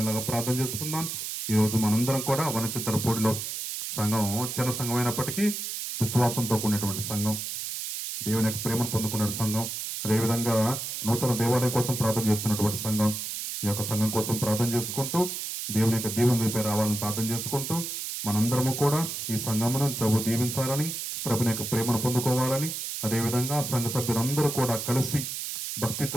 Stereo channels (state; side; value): noise; right; hiss, 5 dB below the sound